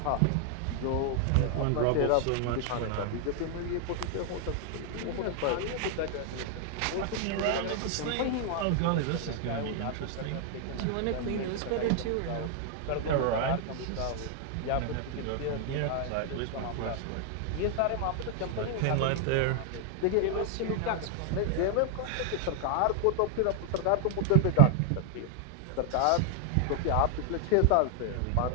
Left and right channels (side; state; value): both; different; correlation 0.00